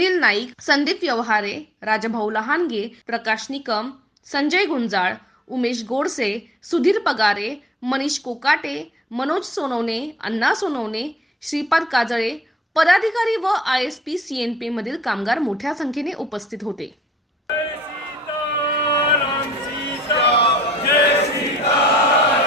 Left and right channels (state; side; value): normal; both; correlation 0.60